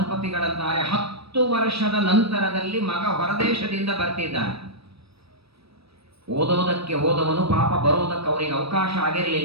10 ವರ್ಷದ ನಂತರದಲ್ಲಿ ಮಗ ಹೊರದೇಶದಿಂದ ಬರ್ತಿದ್ದಾನೆ. ಓದೋದಕ್ಕೆ ಹೋದವನು ಪಾಪ, ಬರೋದಕ್ಕೆ ಅವರಿಗೆ ಅವಕಾಶ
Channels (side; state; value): left; late; 0.77 ms